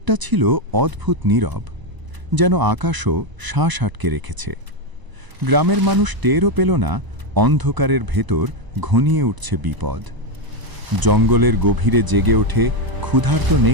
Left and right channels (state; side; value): late; left; 1.0 ms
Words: ছিল অদ্ভুত নীরব, যেন আকাশও শ্বাস আটকে রেখেছে। গ্রামের মানুষ টেরও পেল না অন্ধকারের ভেতর ঘনিয়ে উঠছে বিপদ। জঙ্গলের গভীরে জেগে ওঠে ক্ষুধার্ত